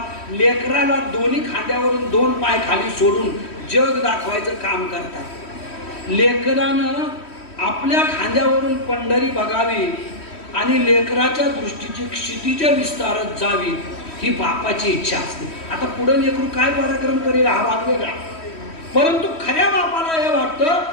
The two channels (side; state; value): right; late; 3.1 ms